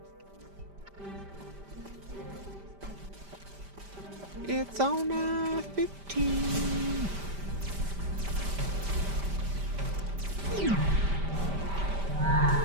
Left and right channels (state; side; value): late; left; 5.1 ms